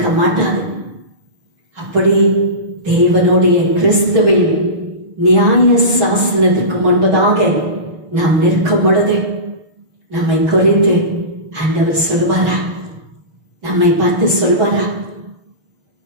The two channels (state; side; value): late; left; 6.2 ms